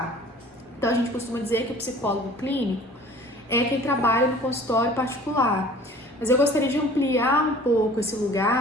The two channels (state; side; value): normal; both; correlation 0.48